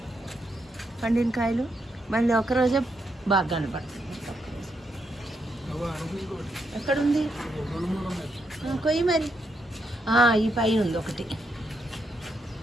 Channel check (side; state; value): both; normal; correlation 0.79